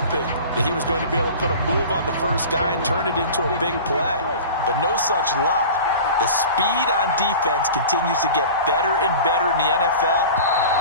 that he was going to be able to put a move on the first guy and turn it into a big play. But no such luck. The speed on defense continues to get better and better in the NFL.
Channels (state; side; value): inverted; both; correlation -0.37